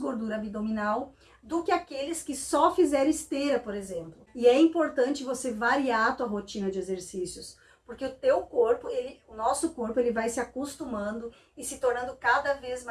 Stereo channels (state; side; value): identical; both; correlation 1.00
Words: abdominal do que aqueles que só fizeram esteira, por exemplo. E é importante você variar a tua rotina de exercícios, porque o teu corpo, o nosso corpo, ele vai se acostumando e se tornando cada vez